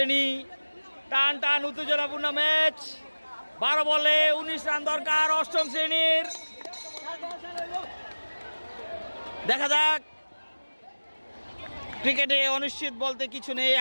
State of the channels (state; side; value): inverted; both; correlation -1.00